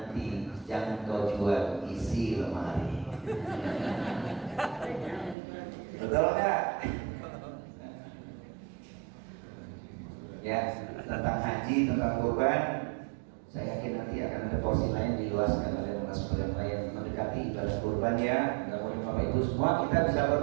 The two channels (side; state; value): left; drops out; at 5.4 s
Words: jangan kau jual isi lemari. Betul nggak? Ya, tentang haji, tentang kurban, saya yakin nanti akan ada porsi lain diluaskan oleh narasumber yang lain mendekati ibadah kurban ya. Mudah-mudahan Bapak Ibu semua kita bisa